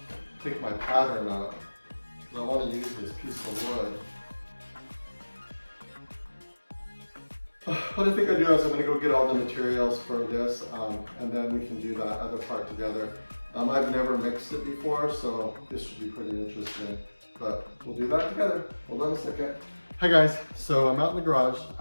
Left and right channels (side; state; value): both; inverted; correlation -1.00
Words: take my pattern up, because I want to use this piece of wood. What I think I do is I'm going to go get all the materials for this, and then we can do that other part together. I've never mixed it before, so this should be pretty interesting, but we'll do that together. Hold on a second. Hi guys, so I'm out in the garage.